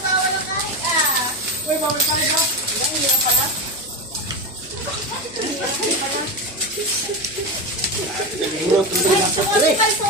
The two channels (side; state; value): left; noise; hum, 24 dB below the sound